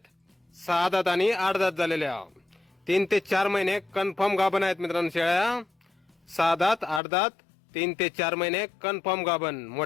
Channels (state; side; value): drops out; right; at 7.0 s